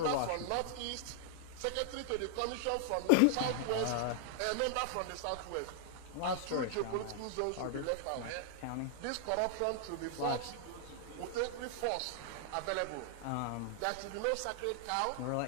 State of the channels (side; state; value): both; different; correlation -0.01